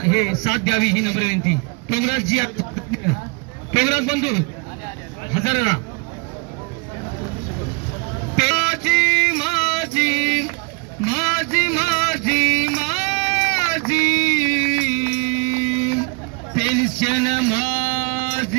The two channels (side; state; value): left; quieter; 30.5 dB